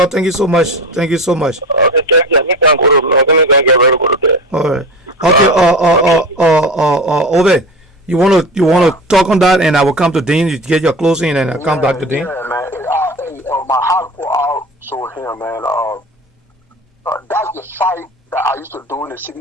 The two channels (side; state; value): both; normal; correlation 0.30